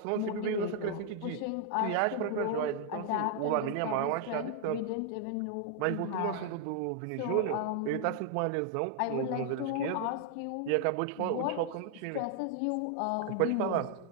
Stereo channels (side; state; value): both; different; correlation 0.00